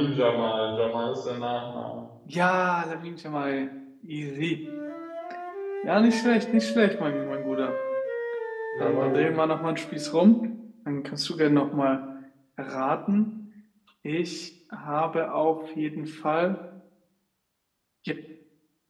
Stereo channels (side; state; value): both; identical; correlation 1.00